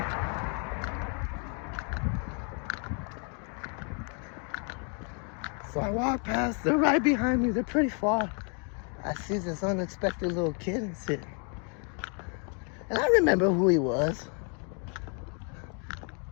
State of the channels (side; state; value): right; quieter; 39.6 dB